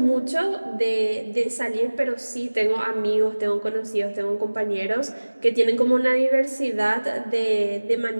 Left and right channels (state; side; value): inverted; both; correlation -1.00